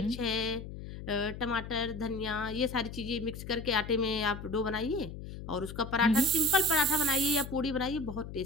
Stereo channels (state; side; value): noise; left; hum, 10 dB below the sound